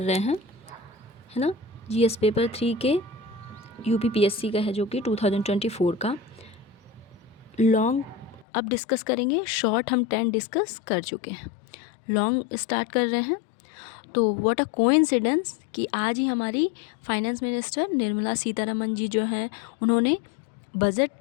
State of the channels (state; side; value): drops out; right; at 8.5 s